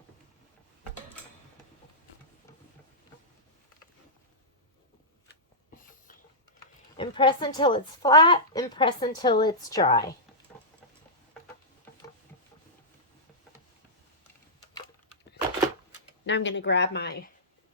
And press until it's flat and press until it's dry. Now I'm going to grab my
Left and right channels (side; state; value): both; normal; correlation -0.13